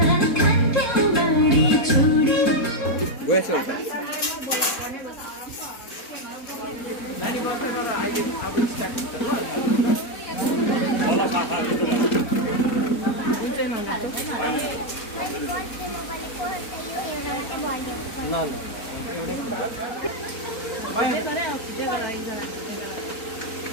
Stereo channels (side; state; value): right; late; 4.0 ms